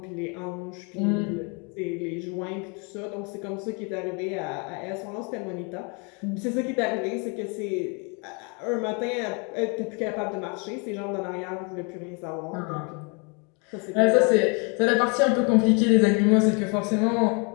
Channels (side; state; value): right; quieter; 33.6 dB